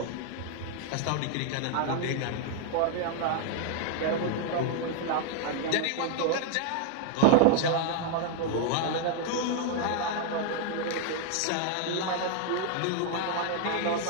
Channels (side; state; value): both; different; correlation 0.00